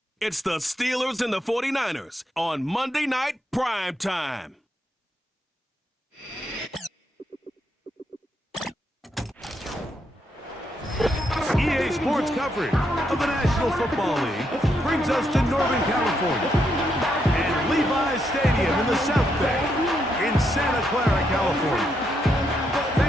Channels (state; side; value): normal; both; correlation 0.79